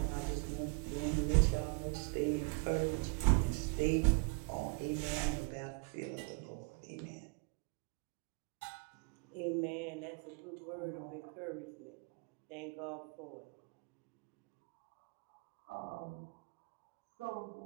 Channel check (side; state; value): left; quieter; 32.0 dB